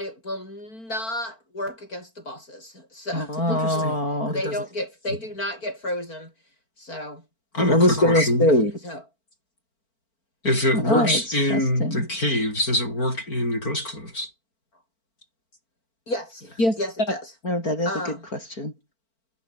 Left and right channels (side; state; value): right; late; 4.4 ms